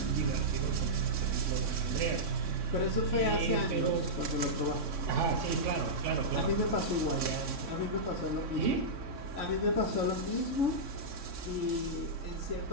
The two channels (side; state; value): left; late; 3.6 ms